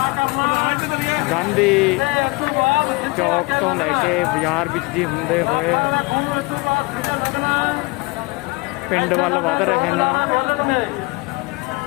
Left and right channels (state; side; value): quieter; right; 25.2 dB